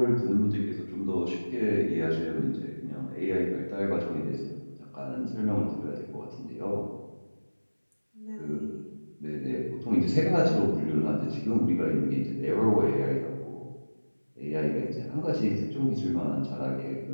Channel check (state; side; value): inverted; both; correlation -1.00